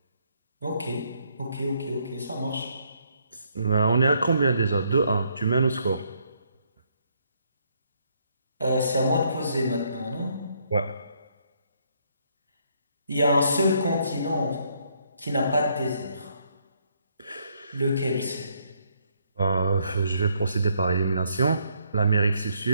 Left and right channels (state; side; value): inverted; both; correlation -0.71